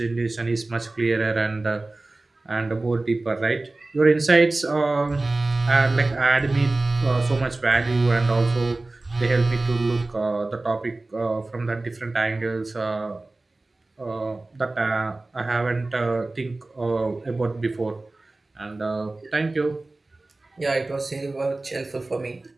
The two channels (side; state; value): left; quieter; 3.1 dB